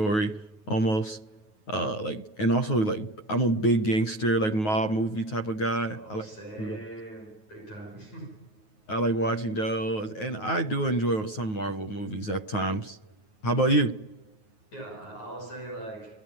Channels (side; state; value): right; late; 9.4 ms